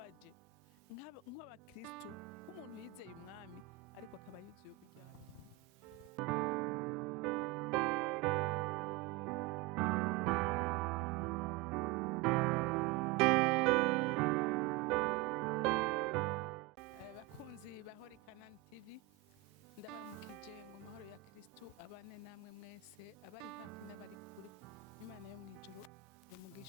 nk'abakristo nk'umuntu yizeye umwami ariko akaba yuzuye uburyarya. Bakunzi bahori Kanani TV, ndabaramukije ngo amahoro ya Kristo abane namwe mwese, abari hafi n'abari kure. Imana yo mwijuru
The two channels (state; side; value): quieter; left; 17.6 dB